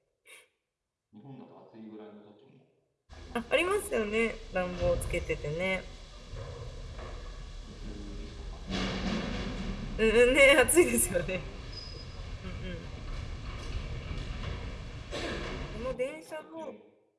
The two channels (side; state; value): both; identical; correlation 1.00